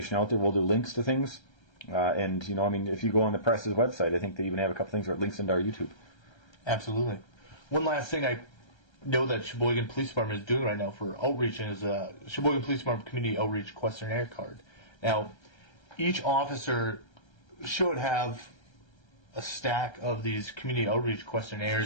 out there. We'll do links to things. If you go on the press's website, I think they even have a couple things where it links into our YouTube. Absolutely. One last thing I know that Sheboygan Police Department is doing right now for outreach is a Sheboygan Police Department Community Outreach Questionnaire card. Now, each officer should have a stack of these community outreach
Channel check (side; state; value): right; late; 1.3 ms